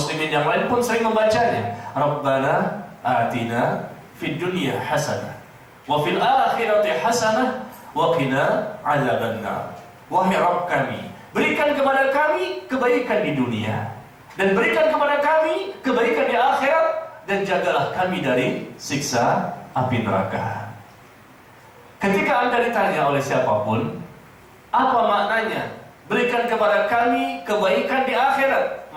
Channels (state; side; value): identical; both; correlation 1.00